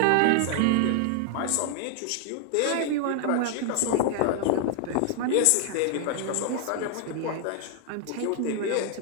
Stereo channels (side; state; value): both; different; correlation 0.00